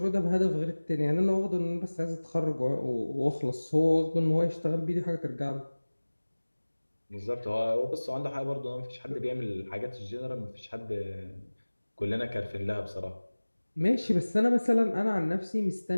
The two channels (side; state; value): both; inverted; correlation -1.00